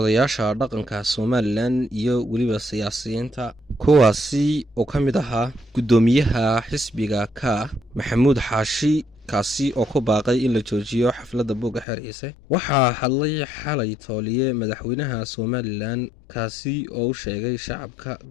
dhaqanka Somaliland iyo weliba siyaasiyiinta, kuwaasi oo ka mid ahaa guddoomiyaha xisbiga ka Maxamuud Xaashi, kaasi oo ku baaqay in la joojiyo xafladda buugga xeer ciise. waxaa hadlay xalay tooliye madaxweynaha Somaliland, kaasi oo u sheegay shacabka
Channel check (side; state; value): right; drops out; at 11.9 s